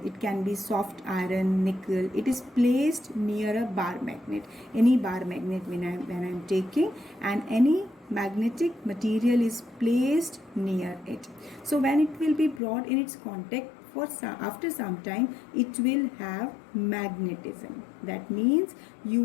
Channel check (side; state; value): right; drops out; at 12.6 s